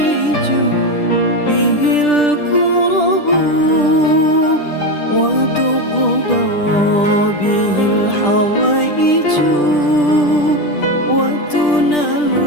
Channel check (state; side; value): late; right; 10 ms